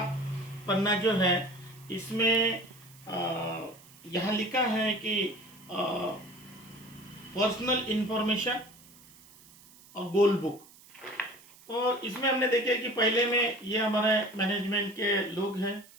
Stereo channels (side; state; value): right; noise; hiss, 24 dB below the sound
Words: पन्ना जो है, इसमें यहाँ लिखा है कि पर्सनल इंफॉर्मेशन और गोल बुक। तो इसमें हमने देखे कि पहले में ये हमारे मैनेजमेंट के लोग हैं,